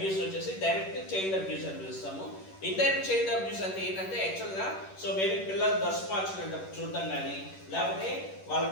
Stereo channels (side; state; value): right; late; 10 ms